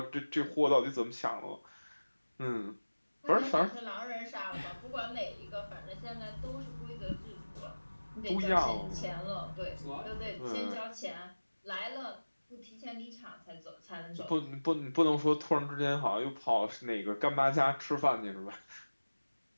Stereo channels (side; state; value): both; inverted; correlation -1.00